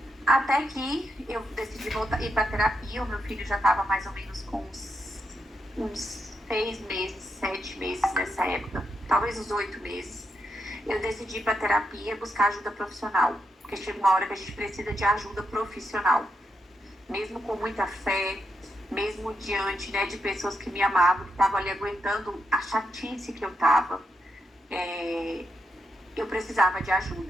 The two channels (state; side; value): normal; both; correlation 0.83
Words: Até que eu decidi ir para terapia. O meu filho já estava mais ou menos com uns 6 meses, 7 meses nessa época, talvez uns 8 meses. Eu decidi ir para terapia, buscar ajuda profissional, porque chega uma hora que a gente precisa de ajuda profissional. Mesmo com muita fé, mesmo diante, né, de pessoas que me amavam, que estavam ali aguentando a chatice que eu estava, eu precisava de